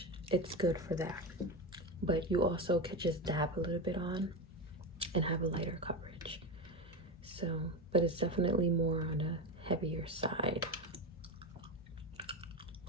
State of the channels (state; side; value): normal; both; correlation 0.17